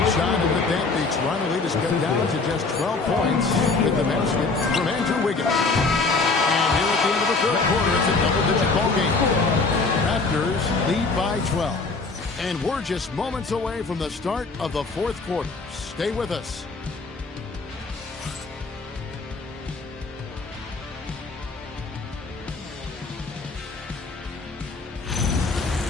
shot, and with that, the Toronto lead is cut down to just 12 points with the basket from Andrew Wiggins. And here at the end of the third quarter, it's a double-digit ball game. Raptors lead by 12. And we're just moments away from the start of the fourth quarter. Stay with us.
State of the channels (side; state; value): right; quieter; 4.0 dB